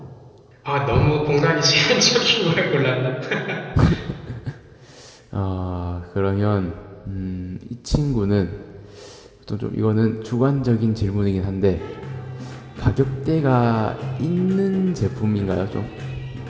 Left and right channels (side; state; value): both; identical; correlation 1.00